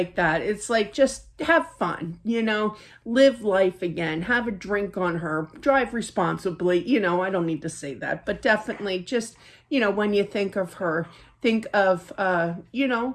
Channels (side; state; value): both; identical; correlation 1.00